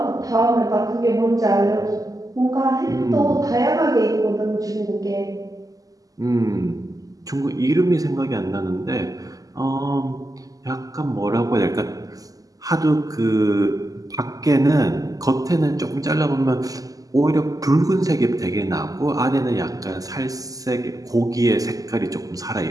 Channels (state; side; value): late; left; 0.17 ms